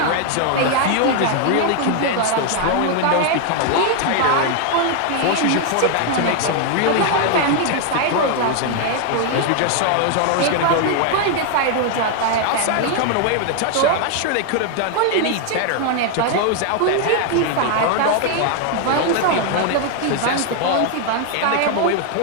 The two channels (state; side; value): different; both; correlation 0.00